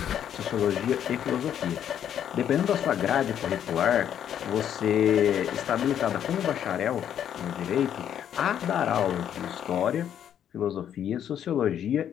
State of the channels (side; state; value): right; quieter; 9.7 dB